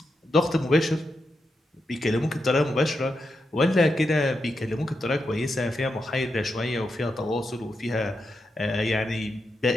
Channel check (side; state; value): both; normal; correlation 0.86